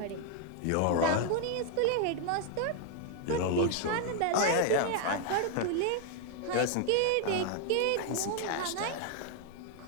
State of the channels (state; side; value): different; both; correlation 0.00